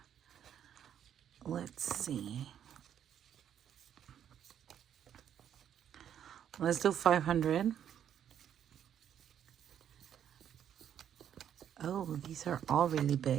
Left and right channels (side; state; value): left; quieter; 9.4 dB